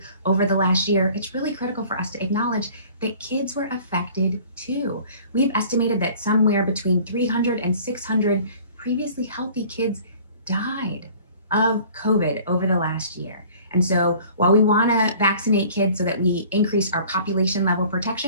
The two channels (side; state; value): both; inverted; correlation -0.49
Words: over the last year, it's really critical for us to acknowledge that kids were affected too. We've estimated that somewhere between 300 and 600 previously healthy kids died of COVID over the last year. And so while we want to vaccinate kids so that we increase our population level